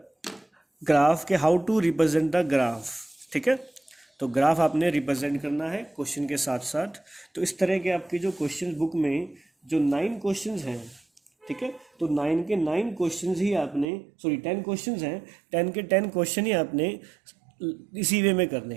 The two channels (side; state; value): left; drops out; at 13.9 s